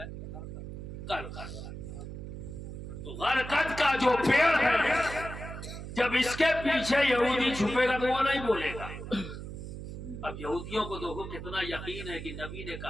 غرقد۔ تو غرقد کا جو پیڑ ہے جب اس کے پیچھے یہودی چھپے گا تو وہ نہیں بولے گا۔ اب یہودیوں کو دیکھو کتنا یقین ہے کہ نبی نے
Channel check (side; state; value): right; noise; hum, 9 dB below the sound